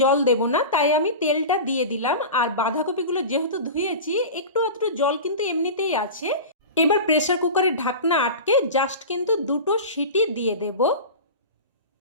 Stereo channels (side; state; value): both; inverted; correlation -0.30